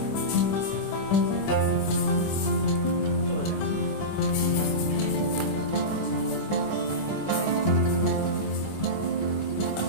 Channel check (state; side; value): late; right; 25 ms